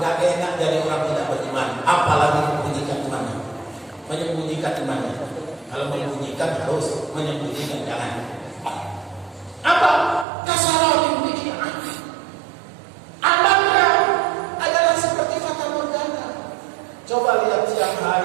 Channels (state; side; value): drops out; left; at 10.2 s